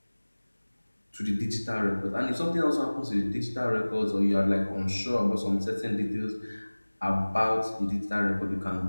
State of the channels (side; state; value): both; inverted; correlation -1.00